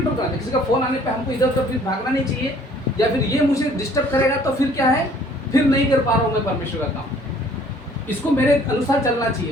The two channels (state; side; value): normal; both; correlation 0.57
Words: करना। किसी का फोन आने पर हमको इधर उधर फिर भागना नहीं चाहिए, या फिर ये मुझे डिस्टर्ब करेगा तो फिर क्या है, फिर नहीं कर पा रहा हूँ मैं परमेश्वर का काम। इसको मेरे अनुसार चलना